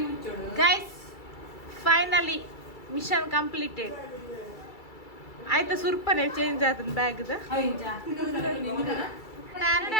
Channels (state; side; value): late; right; 2.3 ms